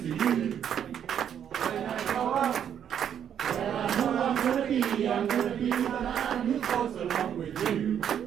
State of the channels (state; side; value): quieter; left; 9.0 dB